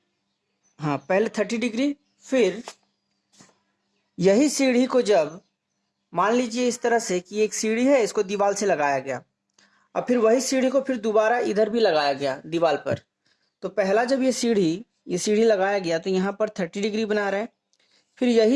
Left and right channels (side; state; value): both; identical; correlation 1.00